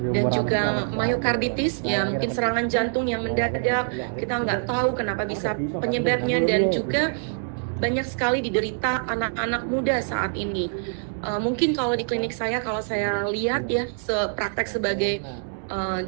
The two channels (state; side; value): silent; left; digital silence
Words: dan juga myokarditis, ya mungkin serangan jantung yang mendadak, kita nggak tahu kenapa bisa penyebabnya, dan juga banyak sekali diderita anak-anak muda saat ini. Mungkin kalau di klinik saya, kalau saya lihat ya, praktek sebagai